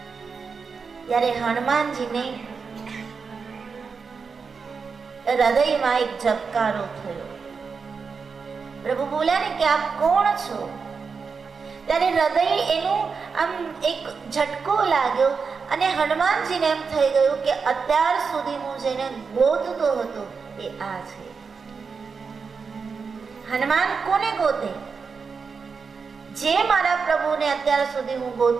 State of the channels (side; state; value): left; quieter; 5.3 dB